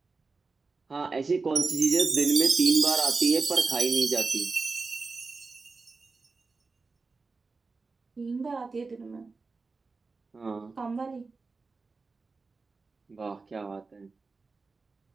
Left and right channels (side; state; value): left; quieter; 4.1 dB